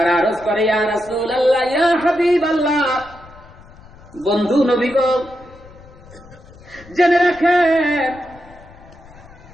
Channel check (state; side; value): noise; left; rumble, 22 dB below the sound